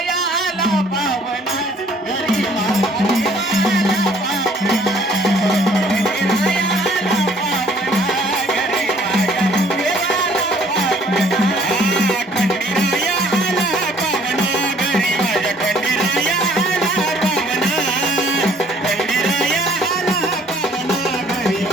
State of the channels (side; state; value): both; normal; correlation 0.59